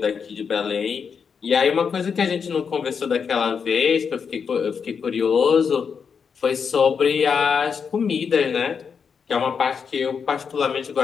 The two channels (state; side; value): quieter; right; 6.3 dB